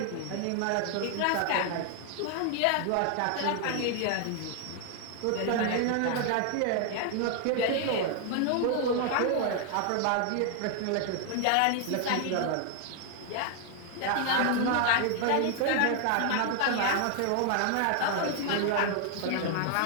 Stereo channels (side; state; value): both; different; correlation 0.00